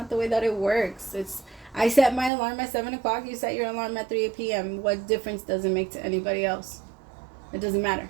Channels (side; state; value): left; drops out; at 2.3 s